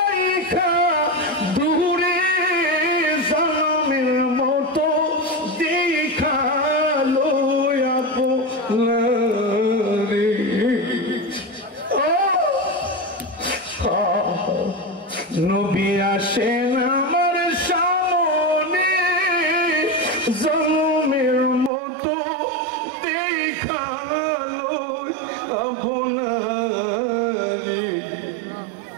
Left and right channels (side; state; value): left; drops out; at 21.7 s